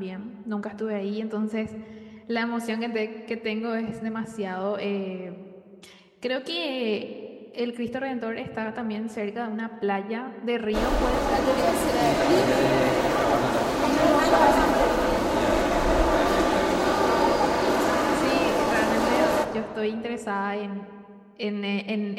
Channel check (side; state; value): both; identical; correlation 1.00